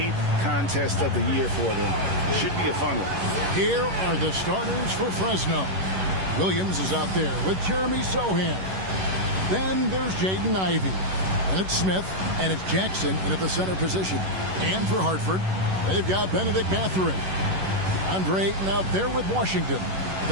contest of the year for them. Should be a fun one. Here are the starters for Fresno. Williams is out there with Jeremy Sohan. Then there's Jaden Ivey. And it's Smith, and it's Jackson in at the center position. And for Hartford, they've got Benedict Mathurin. Andre Ayton out there with Washington.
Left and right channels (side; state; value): left; late; 11 ms